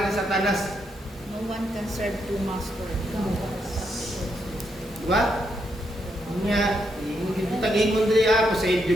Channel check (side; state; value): both; normal; correlation 0.79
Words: ni Satanas. No one can serve two masters. Diba? Nga, tagin mo din ako sa